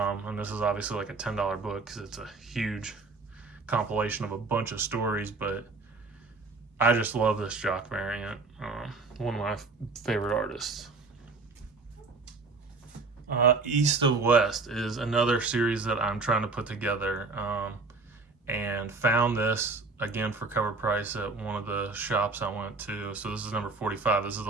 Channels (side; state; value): left; quieter; 3.8 dB